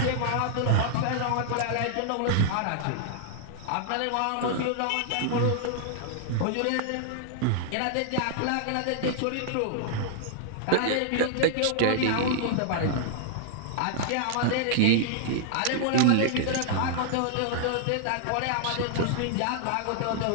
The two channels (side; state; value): both; different; correlation -0.01